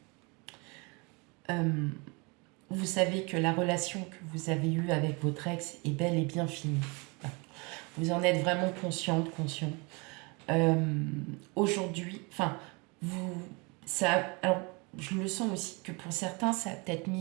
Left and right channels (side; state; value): left; quieter; 29.4 dB